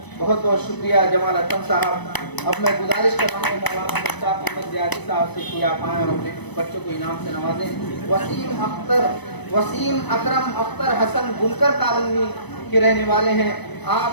بہت بہت شکریہ جمال ارپن صاحب۔ اب میں گزارش کر رہا ہوں مولانا مصطفیٰ محمد زیادی صاحب سے کہ آپ آئیں اور اپنے بچوں کو انعام سے نوازیں۔ وسیم اکرم اختر حسن بنکر کالونی کے رہنے والے ہیں، آپ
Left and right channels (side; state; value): right; late; 1.0 ms